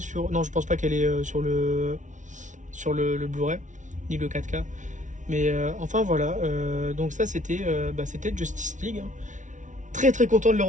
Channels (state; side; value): late; left; 0.37 ms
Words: sur... Non, je pense pas qu'elle est sur le Blu-ray, ni le 4K. Mais enfin voilà, donc ça c'était Justice League, hein. Très très content de le